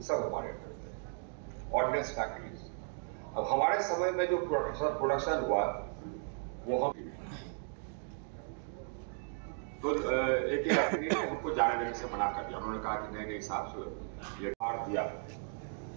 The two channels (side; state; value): left; silent; 54 dB below the other